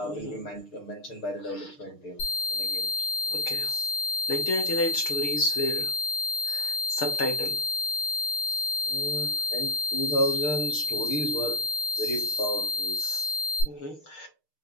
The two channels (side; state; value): right; late; 6.6 ms